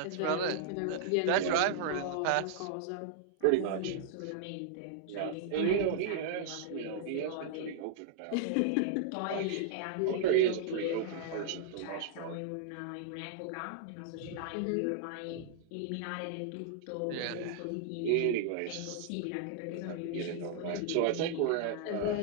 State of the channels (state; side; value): different; both; correlation -0.01